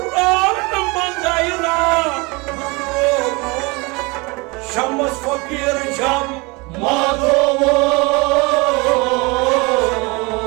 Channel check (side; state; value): left; quieter; 26.6 dB